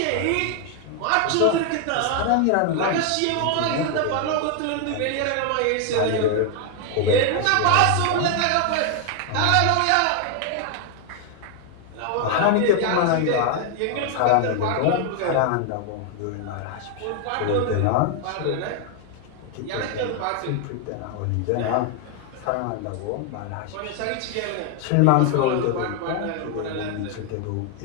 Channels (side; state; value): both; different; correlation 0.01